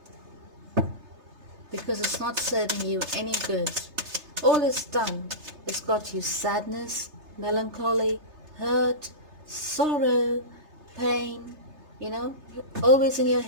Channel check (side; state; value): left; late; 3.3 ms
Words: Because it's not serving you any good. All it's done is got you sadness, melancholy, hurt, sorrow, pain, always in your